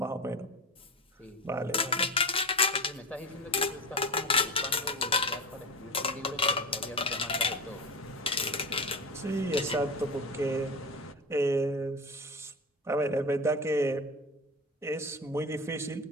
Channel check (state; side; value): normal; both; correlation 0.25